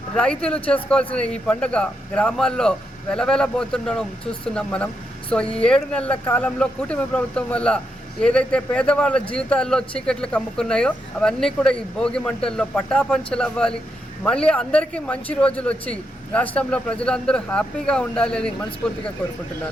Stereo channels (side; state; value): both; normal; correlation 0.82